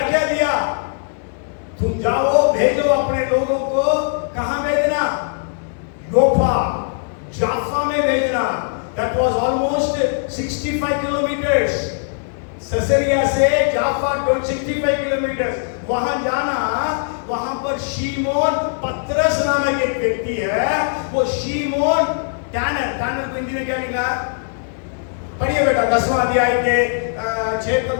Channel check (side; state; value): right; silent; 66 dB below the other